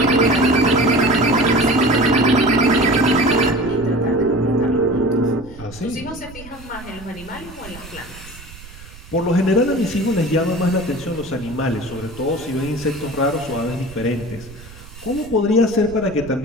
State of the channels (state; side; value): noise; right; rumble, 18 dB below the sound